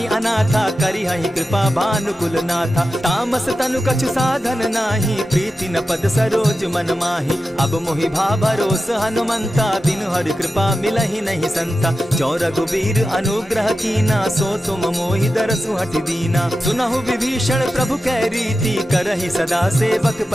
अनाथा, करी हहि कृपा भानुकुल नाथा। तामस तनु कछु साधन नाही, प्रीति न पद सरोज मन माही। अब मोहि भा भरोस हनुमंता, दिन हरि कृपा मिलहि नहीं संता। जो रघुबीर अनुग्रह कीना, सो तुम मोहि दरसु हटि दीना। सुनहु विभीषण प्रभु कै रीति, करहि सदा सेवक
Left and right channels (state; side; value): normal; both; correlation 0.92